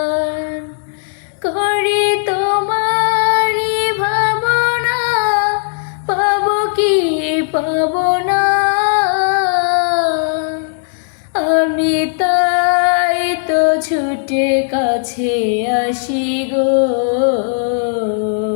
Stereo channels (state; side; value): silent; right; digital silence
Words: করি তোমারি ভাবনা, পাবো কি পাবো না, আমি তাই তো ছুটে কাছে আসি গো,